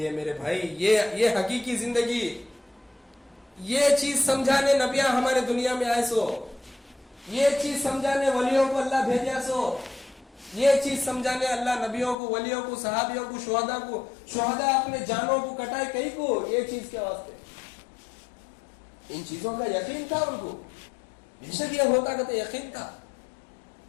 ہے میرے بھائی, یہ حقیقی زندگی. یہ چیز سمجھانے نبیاں ہمارے دنیا میں آئے سو, یہ چیز سمجھانے ولیوں کو اللہ بھیجا سو, یہ چیز سمجھانے اللہ نبیوں کو, ولیوں کو, صحابیوں کو, شہداء اپنے جانوں کو کٹائے کئی کو, یہ چیز کے واسطے. ان چیزوں کا یقین تھا ان کو, بے شک یہ ہوتا کہ یقین تھا.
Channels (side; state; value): right; drops out; at 12.2 s